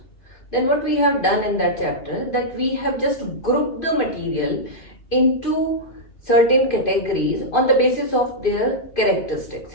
Then what we have done in that chapter, that we have just grouped the material into certain categories on the basis of their characteristics.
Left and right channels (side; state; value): right; late; 2.5 ms